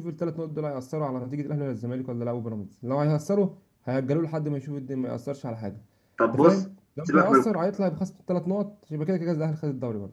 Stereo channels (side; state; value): both; identical; correlation 1.00